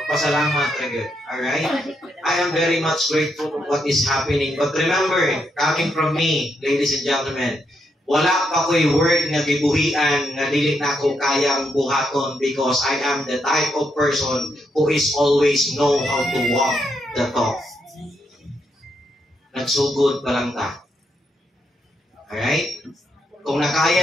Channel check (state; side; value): normal; both; correlation 0.79